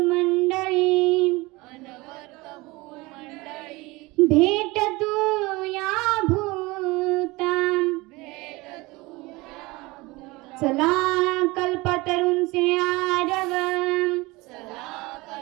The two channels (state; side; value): quieter; left; 22.6 dB